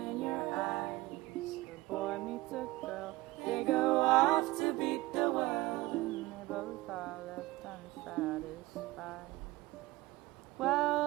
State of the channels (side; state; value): left; quieter; 19.8 dB